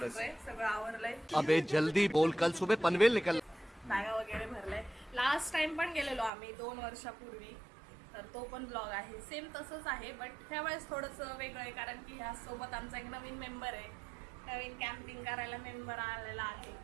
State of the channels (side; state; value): left; drops out; at 6.3 s